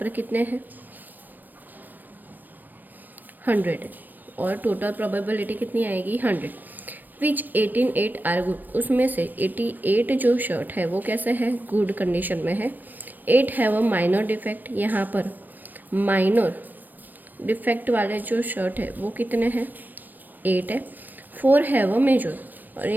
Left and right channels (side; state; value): left; late; 0.089 ms